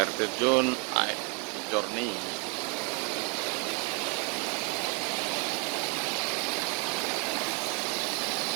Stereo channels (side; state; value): left; quieter; 34.8 dB